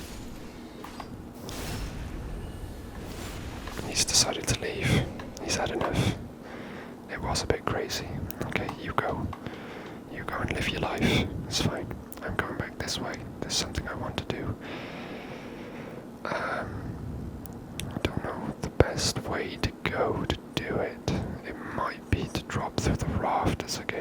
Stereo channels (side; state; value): both; identical; correlation 1.00